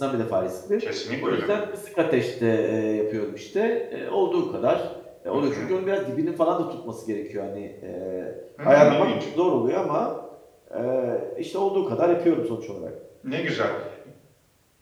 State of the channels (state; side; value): identical; both; correlation 1.00